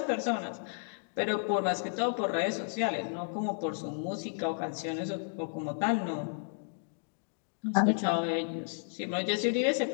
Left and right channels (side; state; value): right; silent; digital silence